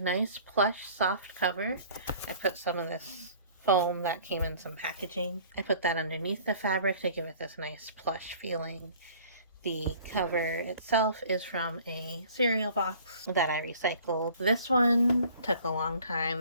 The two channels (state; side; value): inverted; both; correlation -0.50